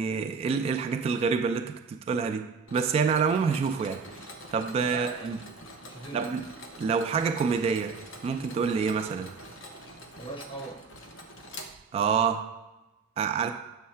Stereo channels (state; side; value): quieter; left; 5.4 dB